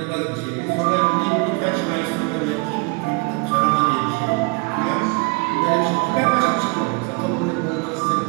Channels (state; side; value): quieter; left; 29.6 dB